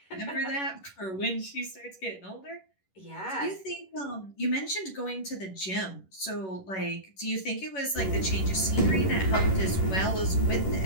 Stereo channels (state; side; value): late; right; 11 ms